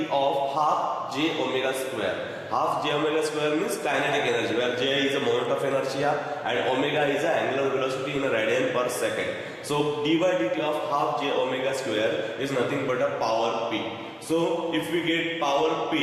of half j omega square. Half j omega square means kinetic energy, where j is the moment of inertia and omega is the angular velocity in a radian per second. So d by dt of half j omega square is nothing but a power P. So if we get power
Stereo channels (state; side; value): identical; both; correlation 1.00